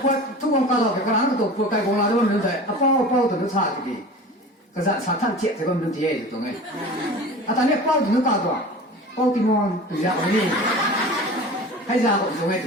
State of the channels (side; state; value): both; normal; correlation 0.37